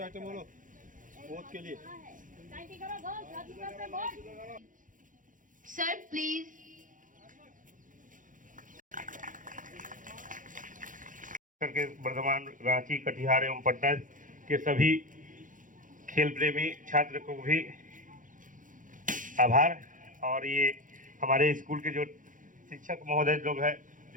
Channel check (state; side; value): late; left; 0.38 ms